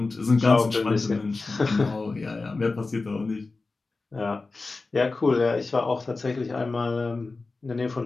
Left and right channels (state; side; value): quieter; right; 3.7 dB